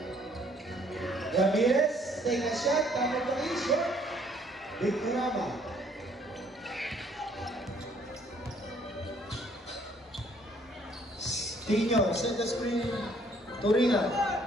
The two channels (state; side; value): normal; both; correlation 0.63